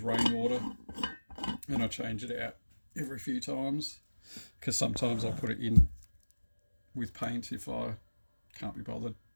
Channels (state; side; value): inverted; both; correlation -1.00